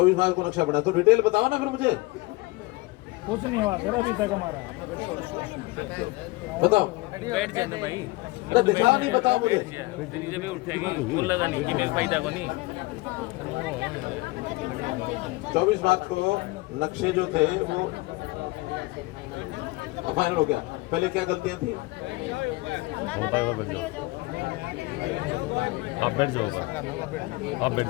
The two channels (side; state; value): right; quieter; 22.3 dB